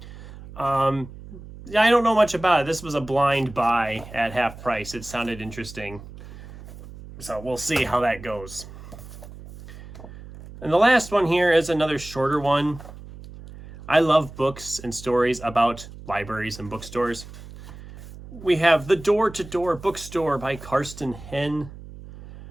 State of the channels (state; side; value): noise; right; hum, 16 dB below the sound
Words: I don't know much about it. This was a blind buy at half price. It sounded interesting. So we'll see how that goes. And the last one here is another shorter one. I love books and stories about libraries and bookstores. We have The Door-to-Door Bookstore by Karsten Henn.